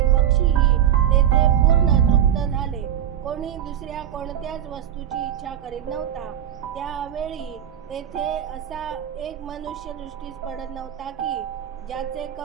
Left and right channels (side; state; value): left; quieter; 10.5 dB